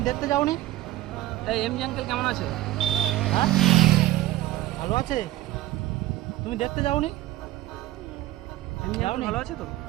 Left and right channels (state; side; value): quieter; left; 16.3 dB